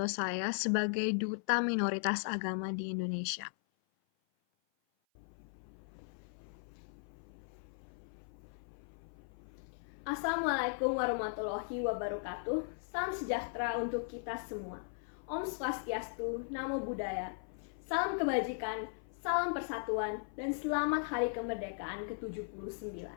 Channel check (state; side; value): silent; right; 53 dB below the other